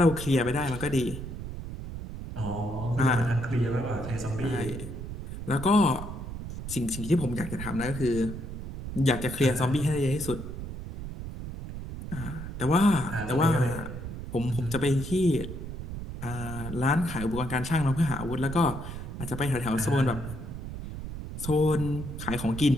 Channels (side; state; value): right; noise; rumble, 8 dB below the sound